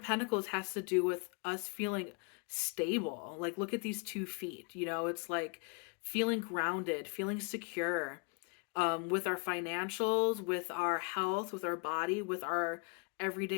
Pentacles has to do with us feeling stable. Like, look at these 2 feet. It's like feeling grounded, feeling secure, with our financials, with our health, with our body, with our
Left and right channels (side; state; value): right; quieter; 33.9 dB